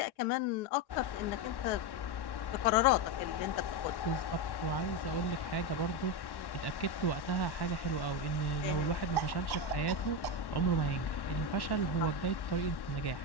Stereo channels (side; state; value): right; late; 1.1 ms